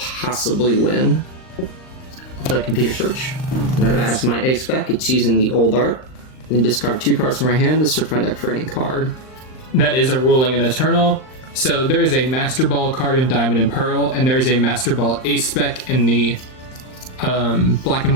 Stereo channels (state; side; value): late; right; 39 ms